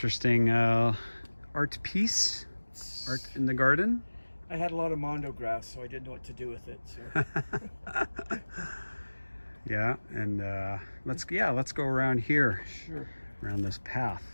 art piece, art in the garden. I had a lot of mondo grass, so I didn't know what to do with it. So. Yeah, and let's go around here. Sure. Around this path.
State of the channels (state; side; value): inverted; both; correlation -1.00